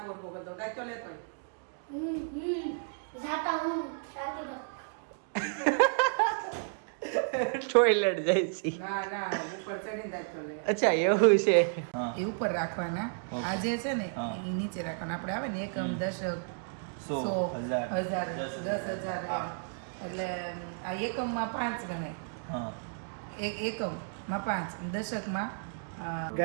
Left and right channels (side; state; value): left; silent; digital silence